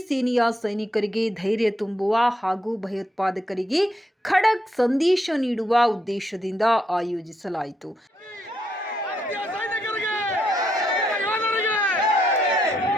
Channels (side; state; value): both; normal; correlation 0.78